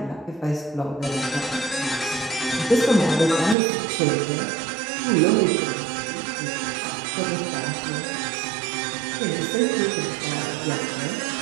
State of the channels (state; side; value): drops out; left; at 3.6 s